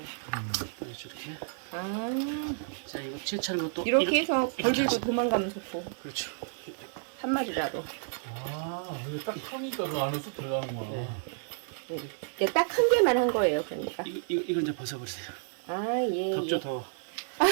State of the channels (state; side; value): silent; left; digital silence